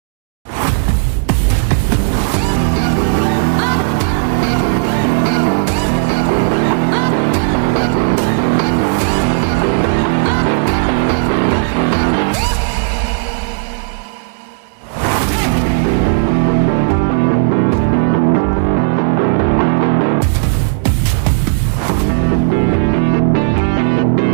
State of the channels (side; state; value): left; silent; digital silence